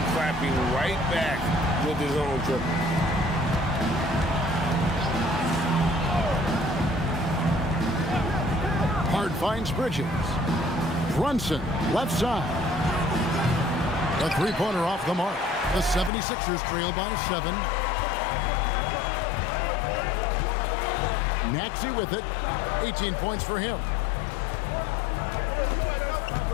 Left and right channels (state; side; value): drops out; right; at 16.1 s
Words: clapping right back with his own triple. Hard finds Bridges. Brunson, left side. A three-pointer off the mark. The 76ers trail by 7. Maxey with it. 18 points for him.